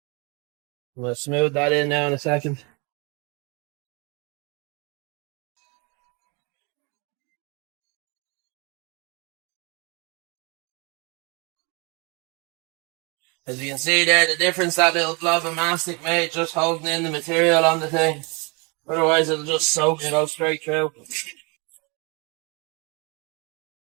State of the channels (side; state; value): left; quieter; 30.7 dB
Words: We'll smooth that in now in a second. As you can see there, the difference that little blob of mastic made just holding in the material on the thing. Otherwise it'll just soak and go straight through.